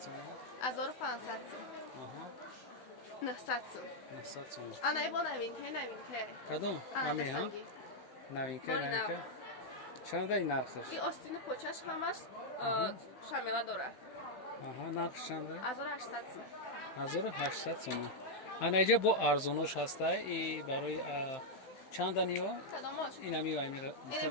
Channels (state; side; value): late; right; 15 ms